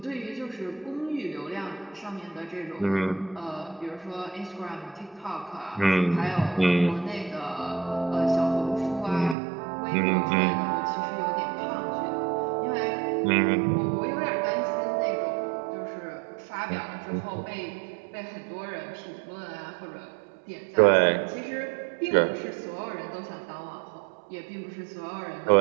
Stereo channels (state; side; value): drops out; left; at 9.3 s